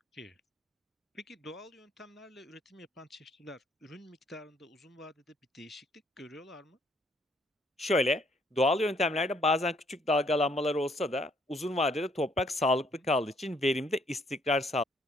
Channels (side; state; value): both; normal; correlation 0.67